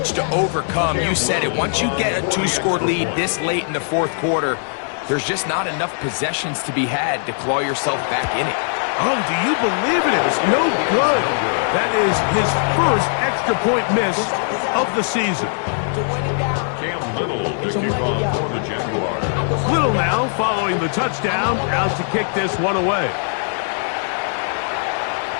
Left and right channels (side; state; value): right; silent; 60 dB below the other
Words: to overcome. You said it. Once you get a 2-score lead this late in the fourth quarter, there's just not enough possessions to be had to claw yourself back in it. Oh, do you believe it? It was no good. That is his first extra point miss of the season. Cam Little to kick off for the Jaguars. Little now following the touchdown, out to kick this one away.